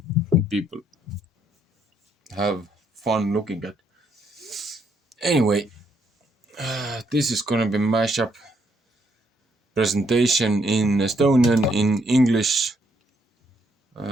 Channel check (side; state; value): both; normal; correlation 0.72